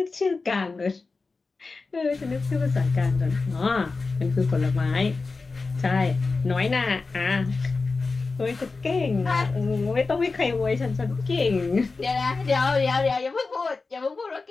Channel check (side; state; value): right; quieter; 4.0 dB